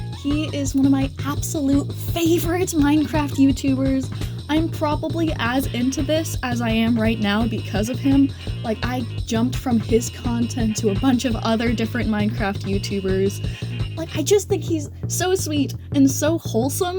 He is one of my absolute favorite Minecraft YouTubers. I'm probably as into this as I am right now because of him. Like, I jumped from his content to a bunch of other different Minecraft YouTubers. Like, I just think he's so sweet and so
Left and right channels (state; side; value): identical; both; correlation 1.00